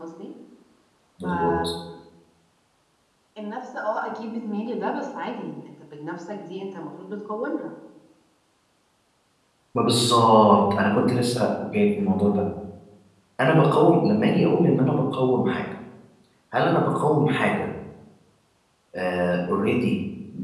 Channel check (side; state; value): both; identical; correlation 1.00